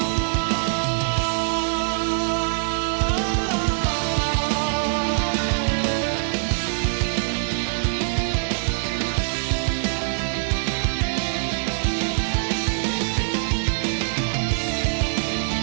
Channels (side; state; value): left; silent; 56 dB below the other